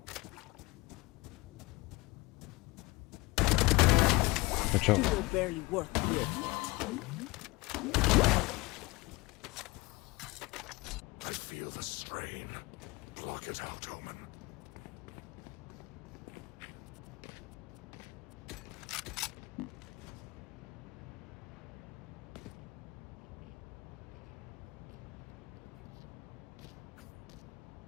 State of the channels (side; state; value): right; quieter; 22.7 dB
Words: Good job. You were barely worth the effort. I feel the strain. Block it out, Omen.